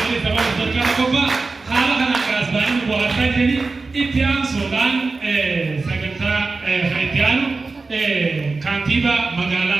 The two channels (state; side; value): quieter; left; 3.9 dB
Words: sababa sarkana kophaa haala kanaan kaasbaanii bu'aataa jedhanii itti aansuudhaan sagantaa itti aanu kantiibaa